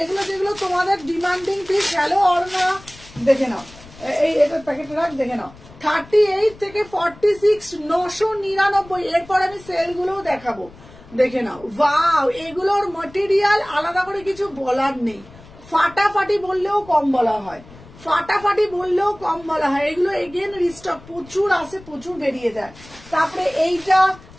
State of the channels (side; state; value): left; noise; rumble, 21 dB below the sound